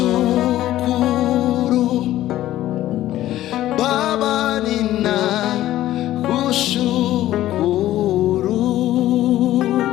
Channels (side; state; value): right; quieter; 14.1 dB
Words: Baba, nina kushukuru.